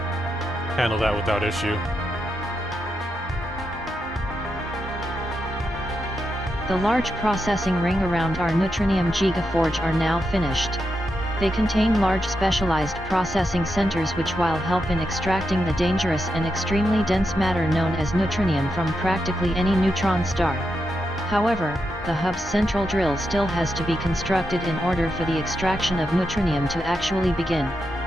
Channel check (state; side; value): normal; both; correlation 0.85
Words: handle that without issue. The large processing ring around our Neutronium Gigaforge are now finished. They contain large specialized processing centers which will help in extracting the dangerous and extremely dense matter known as neutronium from practically any neutron star. However, the hub's central drill still has to be constructed in order for the extraction of neutronium to actually begin.